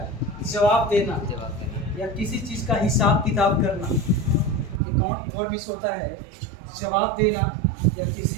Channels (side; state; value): left; drops out; at 4.8 s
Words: जवाब देना या किसी चीज़ का हिसाब किताब करना। अकाउंट फॉर मीन्स होता है जवाब देना या किसी